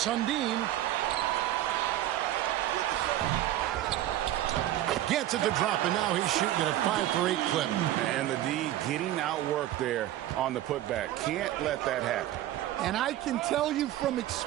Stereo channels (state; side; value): quieter; left; 13.6 dB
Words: Gets it to drop, and now he's shooting at a 5 for 8 clip. And the D getting outworked there on the putback. Can't let that happen. And I can tell you from